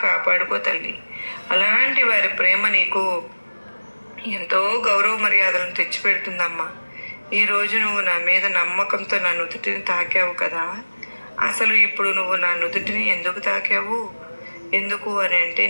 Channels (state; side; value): inverted; both; correlation -1.00